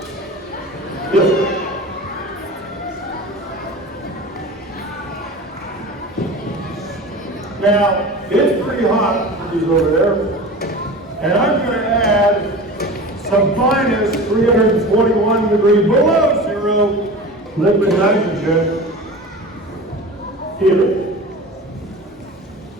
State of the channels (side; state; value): both; normal; correlation 0.34